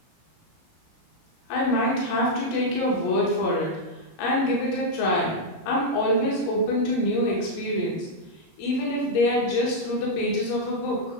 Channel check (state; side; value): late; right; 17 ms